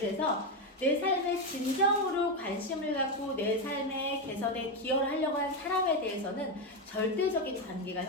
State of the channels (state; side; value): normal; both; correlation 0.09